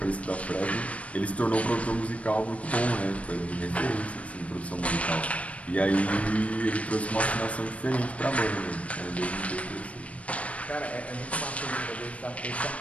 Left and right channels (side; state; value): right; late; 0.065 ms